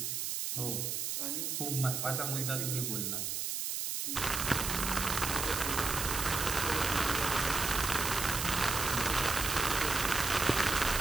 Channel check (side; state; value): right; noise; hiss, 2 dB below the sound